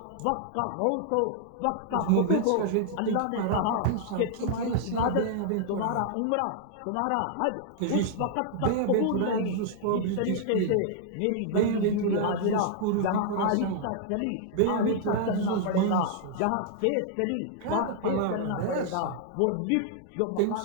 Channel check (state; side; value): different; both; correlation -0.01